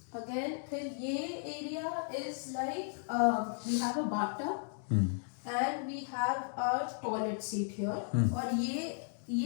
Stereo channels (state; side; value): silent; right; 54 dB below the other